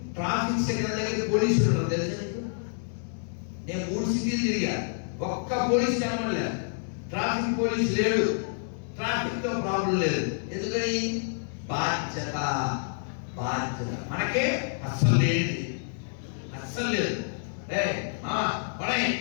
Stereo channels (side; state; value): right; silent; 59 dB below the other